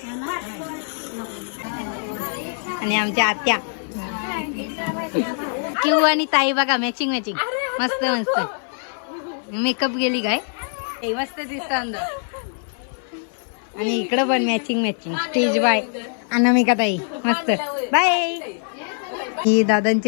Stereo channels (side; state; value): right; silent; 57 dB below the other